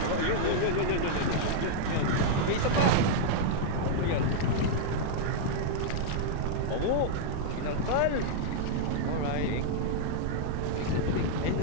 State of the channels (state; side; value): different; both; correlation -0.01